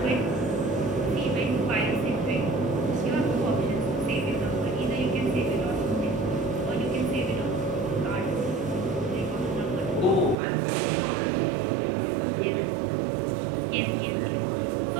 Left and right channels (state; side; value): drops out; left; at 10.4 s